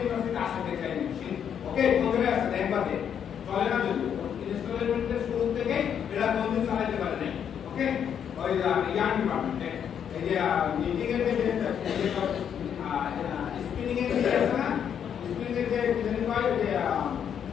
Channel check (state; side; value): quieter; right; 8.4 dB